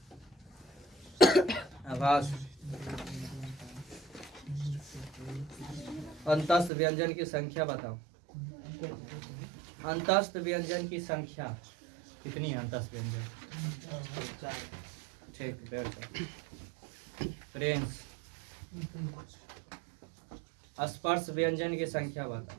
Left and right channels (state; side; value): drops out; left; at 6.7 s